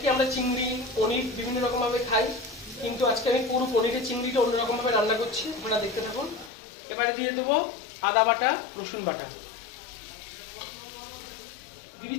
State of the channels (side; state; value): right; drops out; at 6.5 s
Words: আমরা চিংড়ি পনির বিভিন্ন রকম ভাবে খাই, কিন্তু আজকে আমি পুরো পনিরের চিংড়িটা অন্যরকম ভাবে রান্না করছি, আপনারা দেখতে থাকুন। এবারে দিয়ে দেবো আদা বাটা, রসুন বাটা, দিয়ে